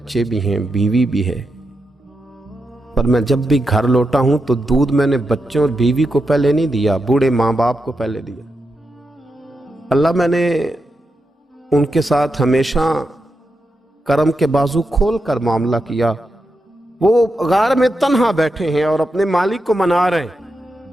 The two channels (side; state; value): both; normal; correlation 0.87